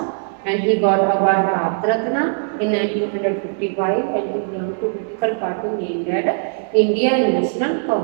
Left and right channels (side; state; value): left; silent; 66 dB below the other